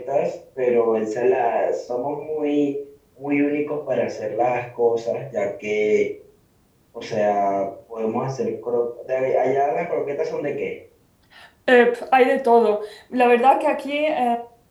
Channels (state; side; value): identical; both; correlation 1.00